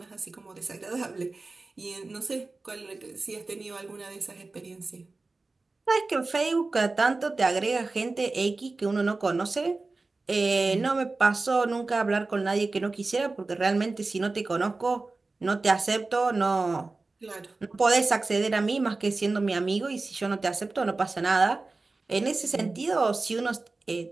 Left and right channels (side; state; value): left; quieter; 3.5 dB